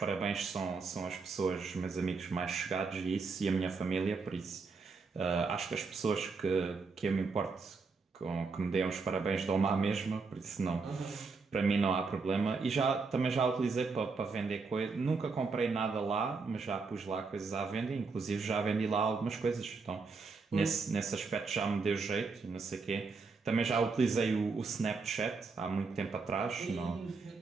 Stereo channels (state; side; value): quieter; left; 4.5 dB